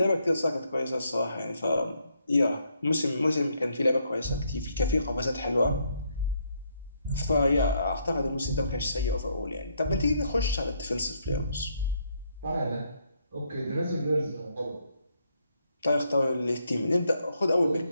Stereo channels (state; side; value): inverted; both; correlation -0.74